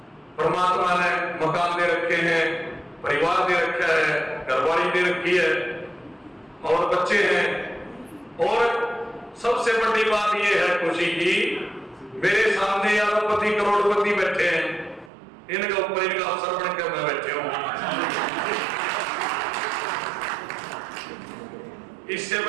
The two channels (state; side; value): drops out; left; at 15.1 s